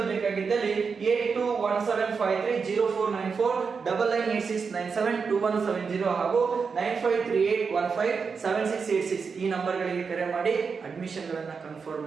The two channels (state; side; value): quieter; left; 5.4 dB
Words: ಬೇಕಾಗಿದ್ದಲ್ಲಿ 8217530494 9986972170 ಹಾಗೂ 9538157686 ಈ ನಂಬರ್ ಗಳಿಗೆ ಕರೆ ಮಾಡಿ ಅಡ್ಮಿಷನ್ ಗಳನ್ನ ಕನ್ಫರ್ಮ್